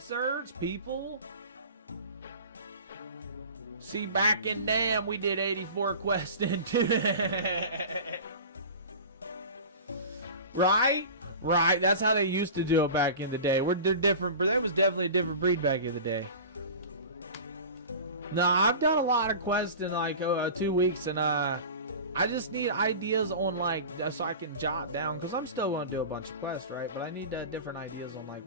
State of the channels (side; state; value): both; inverted; correlation -0.35